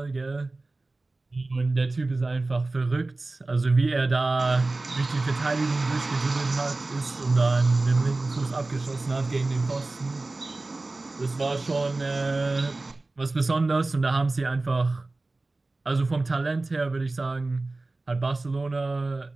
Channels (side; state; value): left; quieter; 3.2 dB